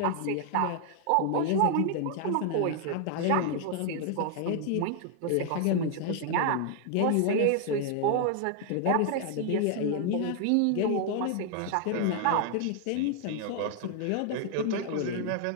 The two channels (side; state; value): both; different; correlation 0.00